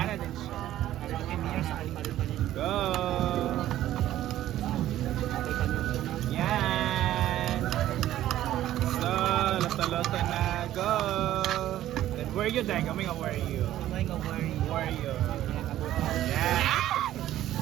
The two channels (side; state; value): left; quieter; 13.3 dB